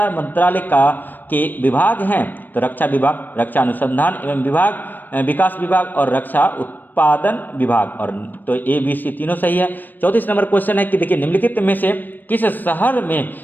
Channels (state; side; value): late; right; 0.089 ms